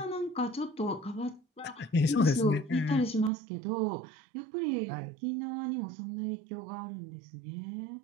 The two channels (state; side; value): drops out; left; at 3.3 s